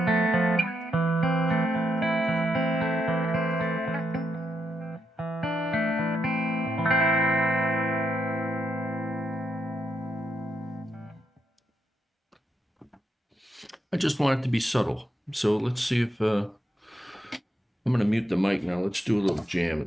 I just want it to be subtle. So let's see if I'm going to mute the mic now. Let's do a little jam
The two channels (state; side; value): normal; both; correlation 0.81